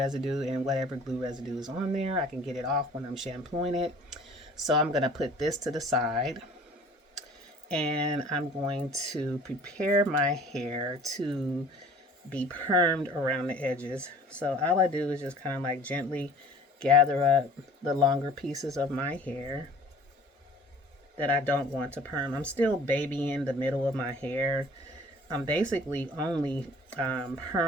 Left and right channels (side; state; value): both; normal; correlation 0.49